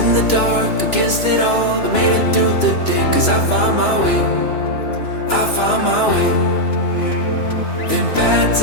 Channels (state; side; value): late; right; 3.0 ms